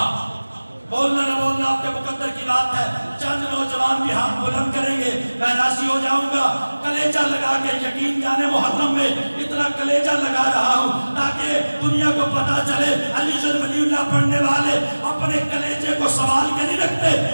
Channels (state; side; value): inverted; both; correlation -1.00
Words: بولنا نہ بولنا آپ کے مقدر کی بات ہے. چند نوجوان بھی ہاتھ بلند کریں گے، میں راضی ہو جاؤں گا. کلیجہ لگا کے، یقین جانے محرم میں اتنا کلیجہ لگا رہا ہوں تاکہ دنیا کو پتا چلے علی جن ولی اللہ پڑھنے والے اپنے کلیجے کو سوال کے نہیں رکھتے.